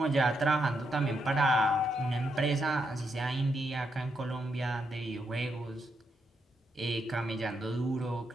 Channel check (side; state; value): both; normal; correlation 0.80